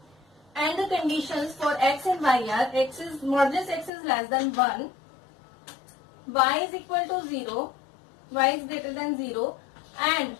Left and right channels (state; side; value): drops out; right; at 3.9 s